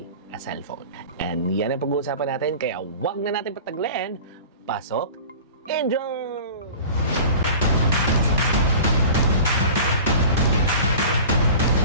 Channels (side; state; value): both; inverted; correlation -0.39